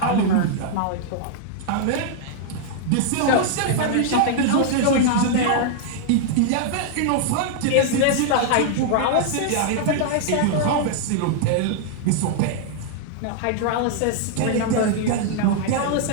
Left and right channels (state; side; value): different; both; correlation -0.01